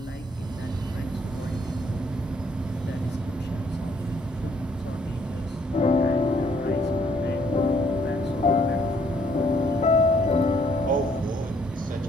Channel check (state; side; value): normal; both; correlation 0.66